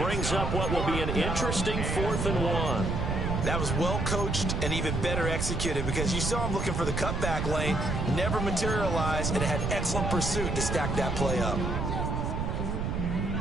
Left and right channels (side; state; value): right; noise; rumble, 1 dB below the sound